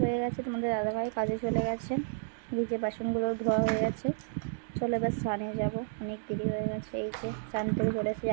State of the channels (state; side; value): silent; left; digital silence